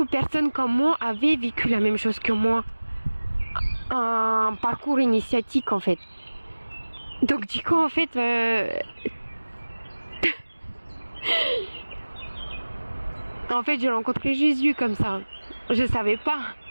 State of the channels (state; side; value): inverted; both; correlation -1.00